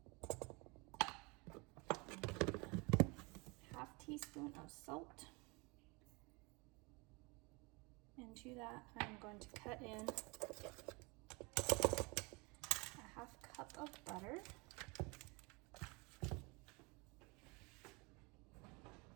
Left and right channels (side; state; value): left; quieter; 27.9 dB